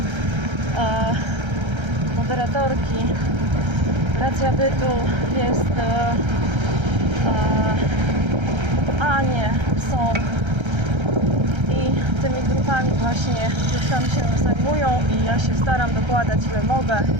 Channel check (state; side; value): late; left; 1.3 ms